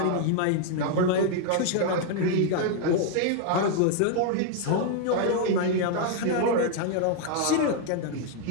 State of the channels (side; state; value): both; different; correlation 0.00